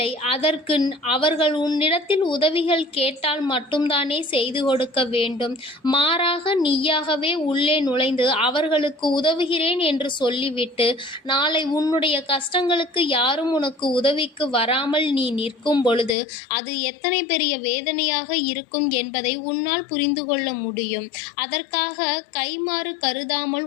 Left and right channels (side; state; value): right; drops out; at 16.2 s